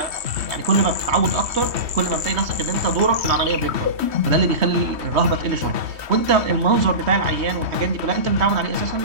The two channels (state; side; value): late; left; 3.2 ms